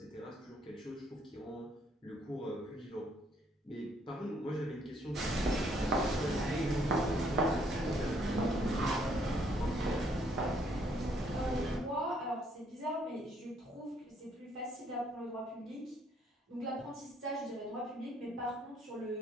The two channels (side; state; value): both; normal; correlation 0.68